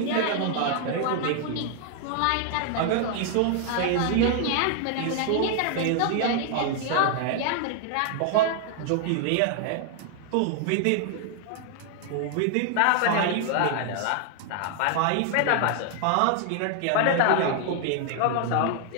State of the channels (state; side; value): different; both; correlation 0.00